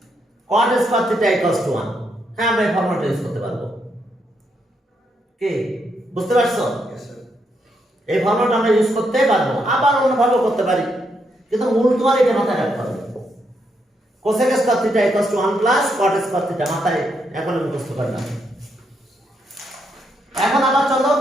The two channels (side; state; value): both; normal; correlation 0.78